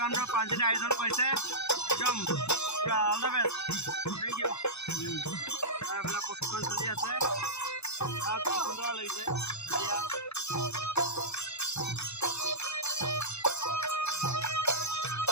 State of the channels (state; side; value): late; right; 0.80 ms